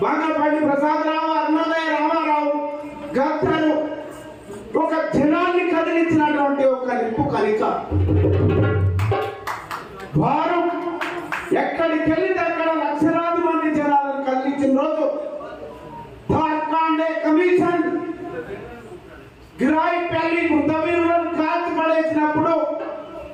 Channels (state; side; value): identical; both; correlation 1.00